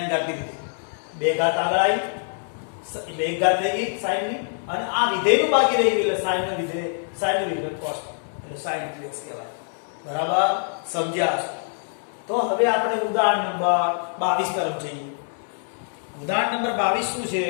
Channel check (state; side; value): silent; right; 62 dB below the other